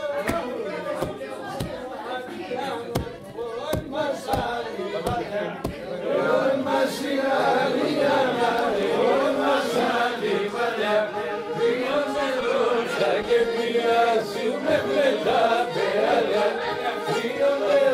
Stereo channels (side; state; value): both; identical; correlation 1.00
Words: Και μοιάζουμε με τα περάλια. Δύο